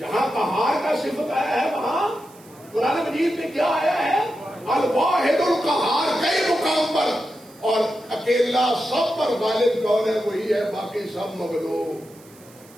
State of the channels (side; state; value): right; noise; hiss, 25 dB below the sound